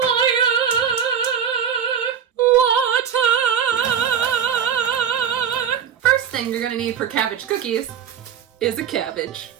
water. First thing you're gonna need for cabbage cookies is a cabbage.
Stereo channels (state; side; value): quieter; left; 8.0 dB